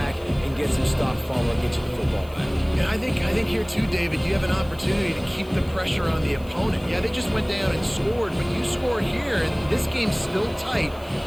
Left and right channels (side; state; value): left; noise; hiss, 24 dB below the sound